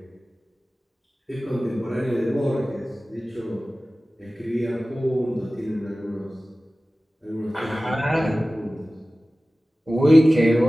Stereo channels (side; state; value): both; normal; correlation 0.97